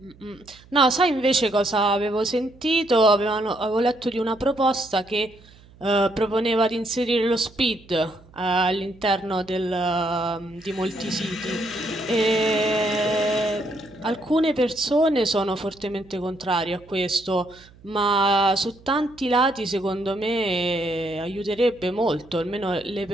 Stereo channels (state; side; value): noise; right; hum, 25 dB below the sound